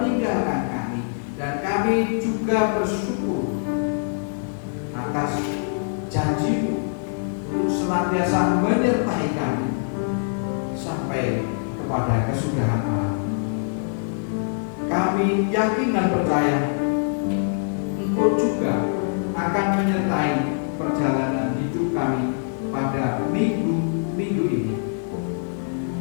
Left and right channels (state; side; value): silent; right; digital silence